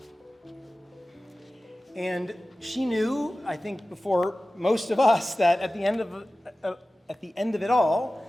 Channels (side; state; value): both; normal; correlation 0.96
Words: And she knew, I think before most of us, that at the end of it